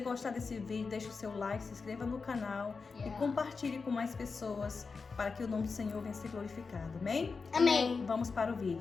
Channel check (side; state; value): right; quieter; 4.7 dB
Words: desse vídeo, deixe o seu like, se inscreva no canal e compartilhe com mais pessoas para que o nome do Senhor venha ser glorificado. Amém? Amém. Vamos para o